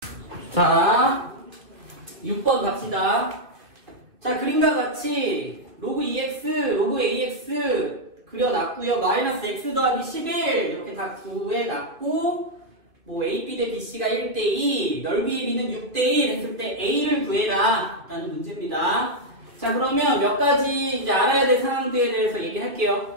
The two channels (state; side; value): late; left; 2.3 ms